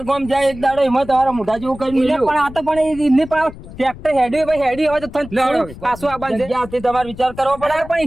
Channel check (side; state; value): left; noise; rumble, 16 dB below the sound